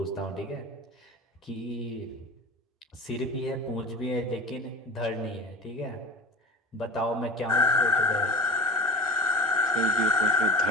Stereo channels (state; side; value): normal; both; correlation 0.34